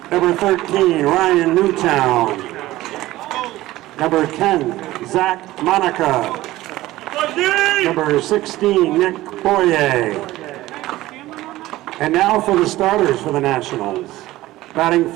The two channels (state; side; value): quieter; left; 16.8 dB